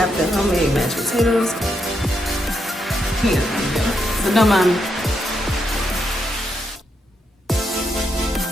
the homemade mashed potatoes. Here, so don't mind me.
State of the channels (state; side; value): normal; both; correlation 0.81